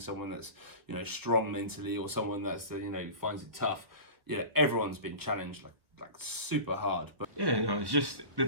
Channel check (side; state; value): left; late; 1.3 ms